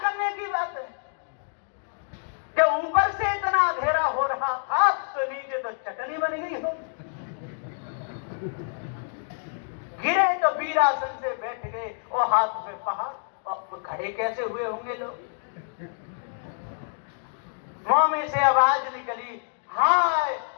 की बात है। जब ऊपर से इतना अंधेरा हो रहा था तो नीचे तो चटनी बन गई हो। गिरे तो वीरासन से बैठ गए और हाथ पे पहाड़, और खड़े कैसे हुए होंगे लोग? मुंह में से आवाज निकली, हाय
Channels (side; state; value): right; silent; digital silence